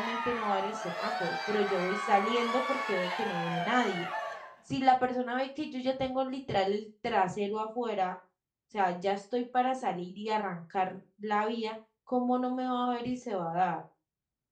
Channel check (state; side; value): identical; both; correlation 1.00